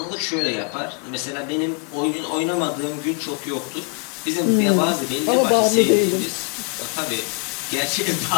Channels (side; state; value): right; quieter; 36.3 dB